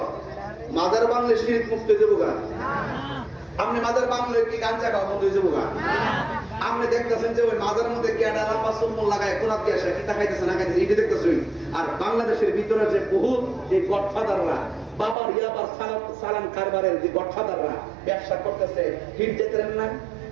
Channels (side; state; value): left; drops out; at 15.2 s